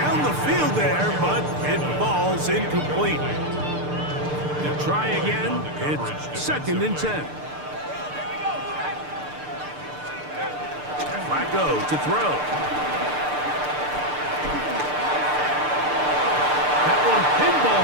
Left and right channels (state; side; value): late; left; 6.7 ms